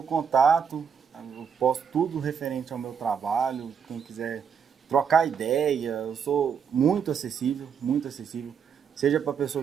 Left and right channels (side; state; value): left; quieter; 7.1 dB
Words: contato, eu posto tudo referente ao meu trabalho. Quem quiser trocar ideia, eu sou muito acessível, muito acessível. Seja para pessoa